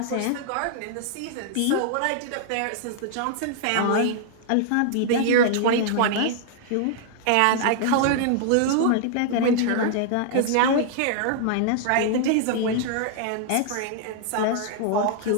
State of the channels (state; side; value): different; both; correlation -0.01